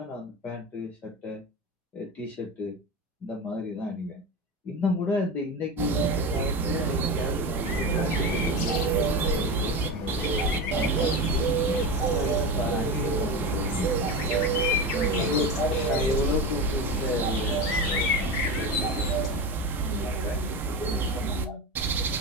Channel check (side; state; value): both; normal; correlation 0.22